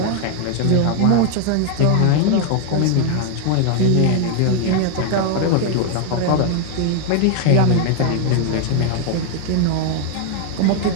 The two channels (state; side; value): different; both; correlation 0.00